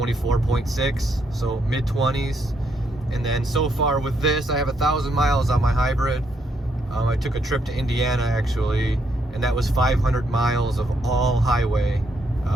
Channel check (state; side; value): normal; both; correlation 0.75